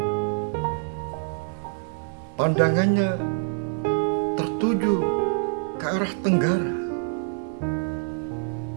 Pandangannya tertuju ke arah tenggara.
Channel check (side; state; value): left; silent; 61 dB below the other